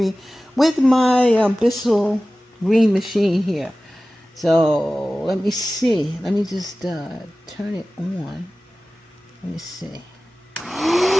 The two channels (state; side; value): normal; both; correlation 0.96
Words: with my BISSELL green machine here. So let me see, let me just turn it on. Let me see.